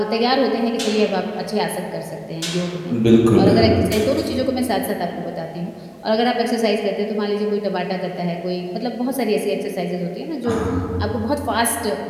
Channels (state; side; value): identical; both; correlation 1.00